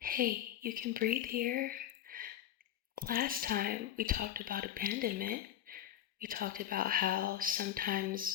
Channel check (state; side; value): quieter; right; 11.6 dB